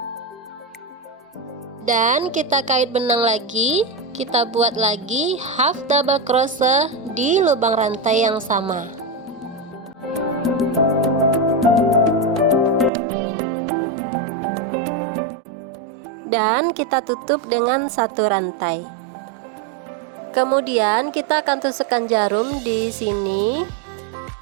Dan kita kait benang lagi. Kita buat lagi half double crochet di lubang rantai yang sama. Dan kita tutup dengan satu rantai. Kemudian kita akan tusukkan jarum di sini.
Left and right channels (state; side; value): drops out; left; at 12.9 s